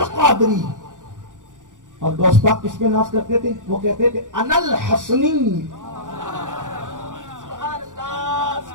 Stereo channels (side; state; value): left; late; 0.87 ms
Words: اور غوث پاک کس پہ ناز کرتے تھے؟ وہ کہتے تھے انا الحسنی،